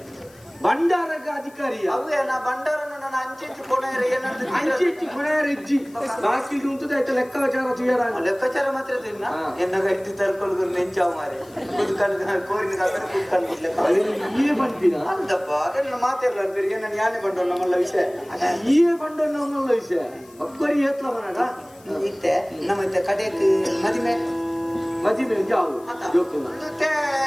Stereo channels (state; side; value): noise; left; hiss, 27 dB below the sound